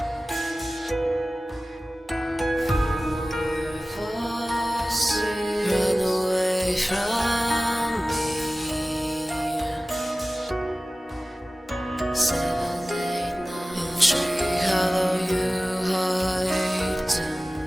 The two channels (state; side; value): normal; both; correlation 0.97